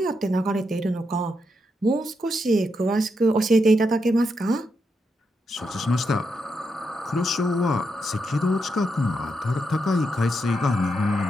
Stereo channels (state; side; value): normal; both; correlation 0.83